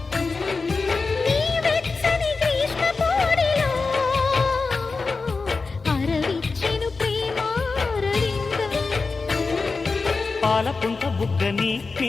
నీ వెచ్చని గ్రీష్మ పోడిలో అరవిచ్చెను ప్రేమారవిందం. పాలపుంట బుగ్గని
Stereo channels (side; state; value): right; quieter; 4.2 dB